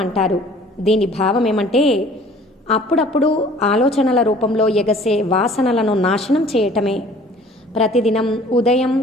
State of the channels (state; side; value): normal; both; correlation 0.51